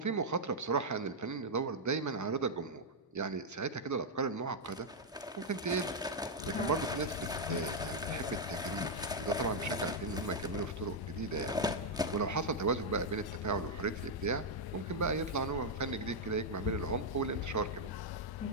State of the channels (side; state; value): both; normal; correlation -0.03